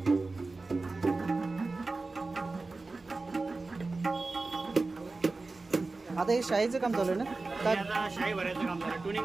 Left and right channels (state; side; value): quieter; left; 3.6 dB